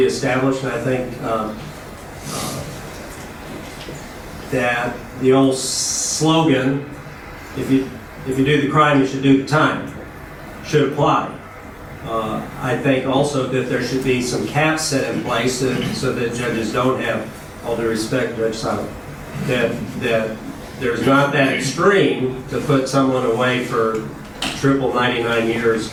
established, and I think that the old slogan, if you do the crime, you should do the time, should apply. I think also that there should be some caps set in place so that judges don't have, all due respect, Judge Simon, that there's not that extreme to put someone away for triple 99 years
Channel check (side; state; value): both; identical; correlation 1.00